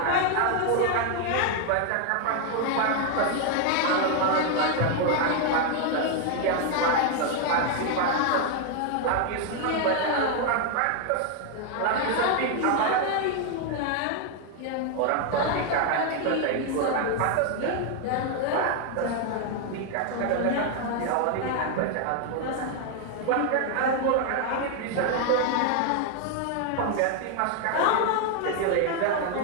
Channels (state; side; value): different; both; correlation 0.00